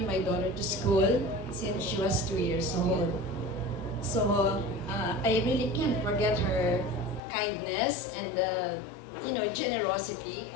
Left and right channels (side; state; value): right; drops out; at 7.2 s